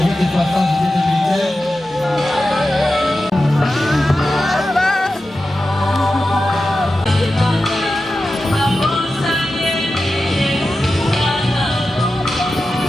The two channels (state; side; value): normal; both; correlation 0.92